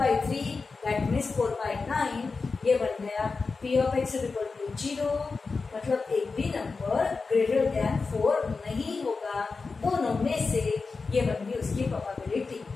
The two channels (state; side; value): quieter; right; 4.3 dB